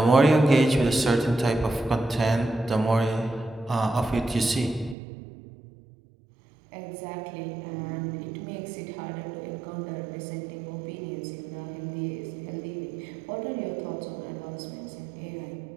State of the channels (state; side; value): drops out; left; at 5.0 s